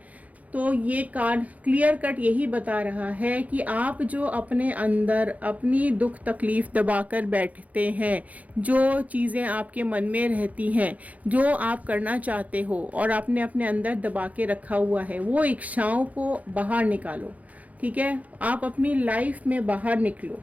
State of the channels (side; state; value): left; late; 0.072 ms